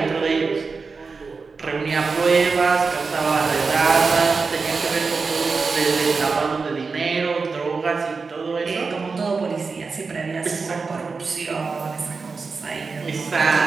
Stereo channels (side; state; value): left; quieter; 4.6 dB